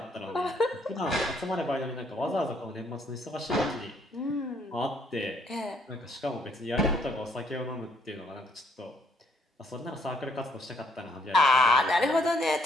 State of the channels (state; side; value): normal; both; correlation 0.68